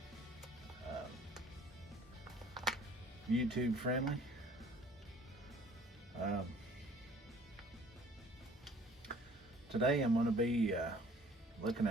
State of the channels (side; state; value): both; normal; correlation 0.54